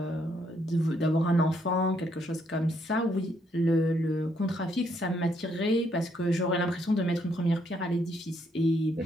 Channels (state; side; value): normal; both; correlation 0.72